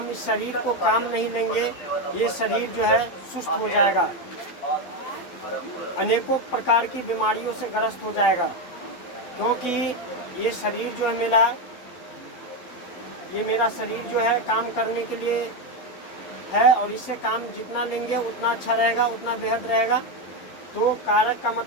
इस शरीर को काम नहीं लेंगे ये शरीर जो है सुस्त हो जाएगा, अनेकों प्रकार की बीमारियों से ग्रस्त हो जाएगा। क्योंकि ये शरीर जो है मेरा शरीर जो है काम करने के लिए है, और इससे काम जितना लेंगे उतना अच्छा रहेगा, उतना बेहद रहेगा। तो कारक का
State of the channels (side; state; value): right; late; 12 ms